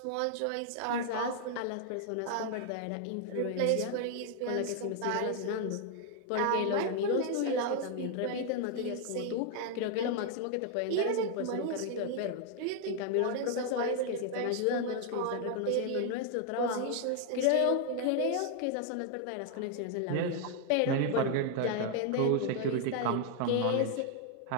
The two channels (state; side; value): different; both; correlation 0.00